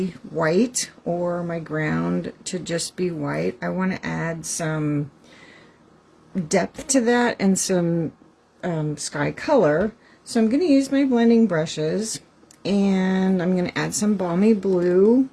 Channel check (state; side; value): identical; both; correlation 1.00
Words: white or my ground to just be white. I want to add some depth to that and some sky color. So I'm going to use my blending brushes, and I'm going to add some Balmy Blue